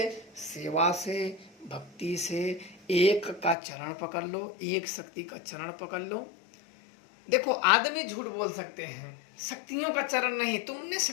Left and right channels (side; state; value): right; drops out; at 3.6 s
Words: सेवा से, भक्ति से, एक का चरण पकड़ लो, एक शक्ति का चरण पकड़ लो। देखो आदमी झूठ बोल सकते हैं, शक्तियों का चरण नहीं, तुमने